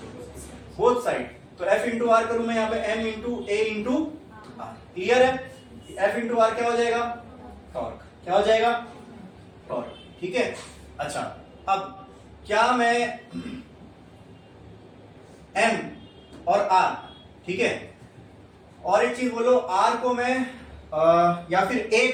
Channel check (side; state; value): both; identical; correlation 1.00